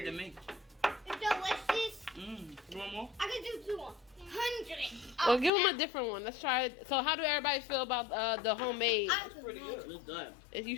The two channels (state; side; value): drops out; right; at 5.5 s